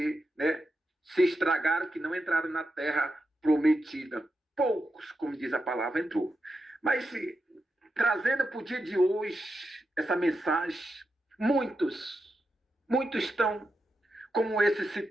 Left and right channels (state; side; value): normal; both; correlation 0.87